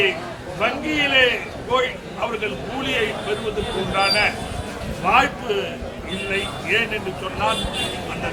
வங்கியிலே போய் அவர்கள் கூலியை பெறுவதற்கு உண்டான வாய்ப்பு இல்லை. ஏன் என்று சொன்னால் அந்த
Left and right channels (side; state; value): both; identical; correlation 1.00